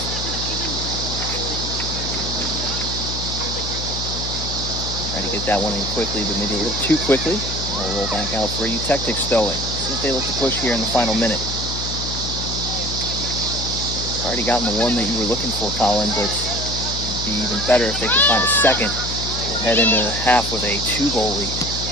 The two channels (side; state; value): left; noise; hum, 6 dB below the sound